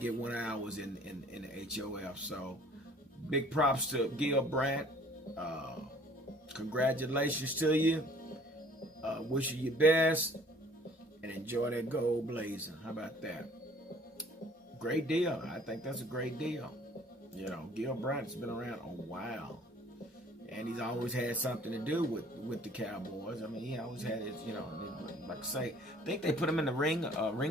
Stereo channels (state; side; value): normal; both; correlation 0.54